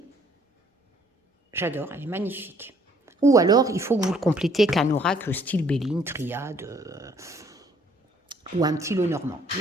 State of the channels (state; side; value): normal; both; correlation 0.62